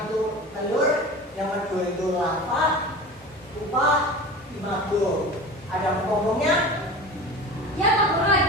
itu telur, yang kedua itu larva, pupa, imago. Ada ngomongnya? Ya, Pak Guru,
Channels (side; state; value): both; normal; correlation 0.34